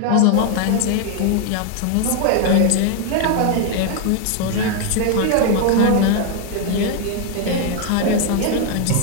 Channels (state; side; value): different; both; correlation 0.01